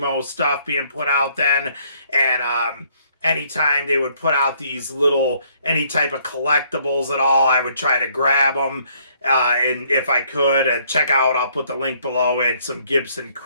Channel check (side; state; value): both; inverted; correlation -0.65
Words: stuff being put out then. And anytime they would put out these little, any type of collectibles at all, I would try to grab them. And if I could, check out, I'll put the link below it, some Gibson